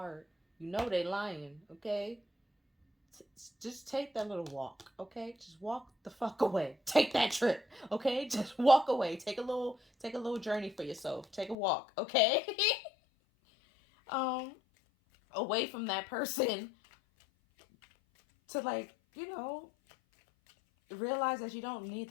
They lying, okay? Just take that little walk, okay? Just walk the fuck away. Take that trip, okay? Just walk away. Take a little journey for yourself. Take a walk, okay? um, Away from that person to, like, you know, realize that you don't need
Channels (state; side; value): drops out; right; at 11.6 s